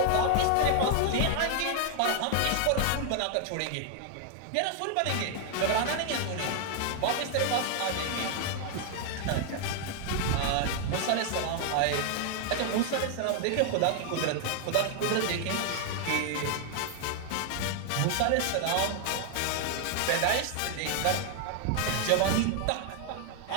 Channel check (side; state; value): both; different; correlation 0.00